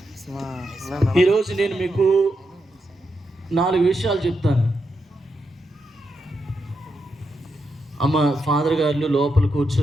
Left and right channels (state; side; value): normal; both; correlation 0.84